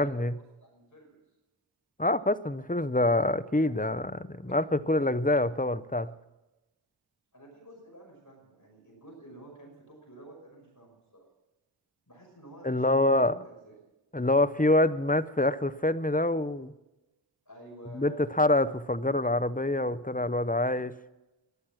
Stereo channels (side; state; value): both; normal; correlation 0.24